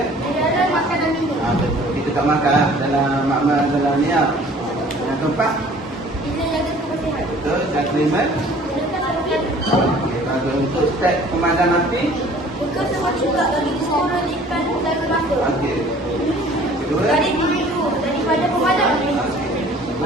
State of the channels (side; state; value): both; normal; correlation 0.51